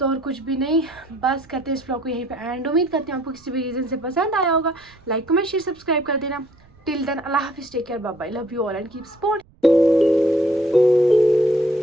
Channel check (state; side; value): noise; right; rumble, 29 dB below the sound